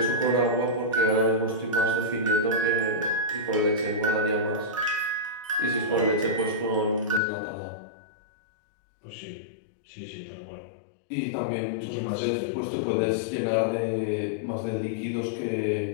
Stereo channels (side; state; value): right; drops out; at 7.2 s